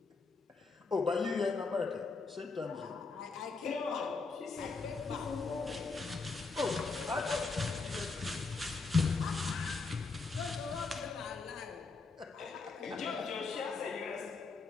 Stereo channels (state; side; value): quieter; right; 4.2 dB